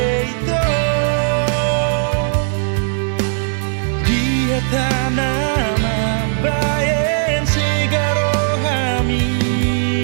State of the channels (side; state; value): left; silent; digital silence